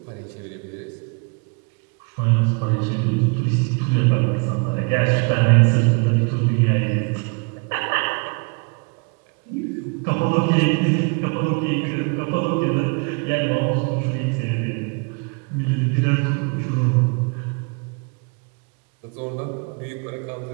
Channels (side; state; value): left; quieter; 34.4 dB